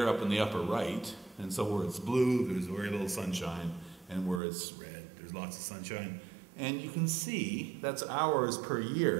up in the upper right, and so where it's blue, there's very little sunshine, and where it's red, there's lots of sunshine. And you can see that's hours per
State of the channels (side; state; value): left; drops out; at 4.4 s